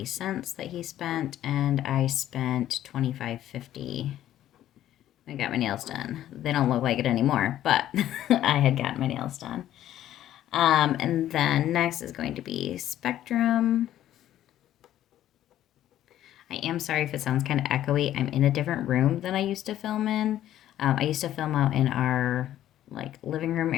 that he spent, and I spent $25.50. I got my nails done. They don't look like it anymore, but I had gotten my nails done. And then next is going to be Spectrum. I am sorry if it sounds kind of echoey. I'm in a different room than I used to film in. I used to film out in our living room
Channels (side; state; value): right; quieter; 12.4 dB